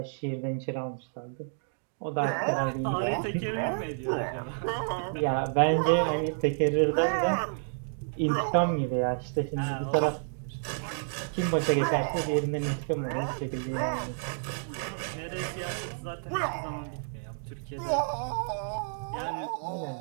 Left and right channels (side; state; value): left; silent; digital silence